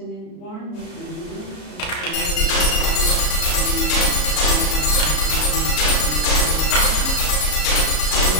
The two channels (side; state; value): right; late; 33 ms